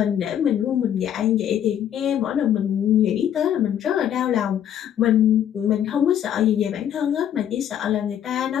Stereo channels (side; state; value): right; quieter; 10.0 dB